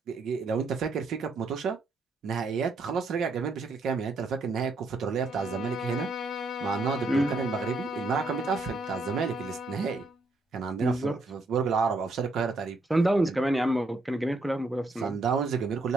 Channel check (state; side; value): quieter; left; 3.1 dB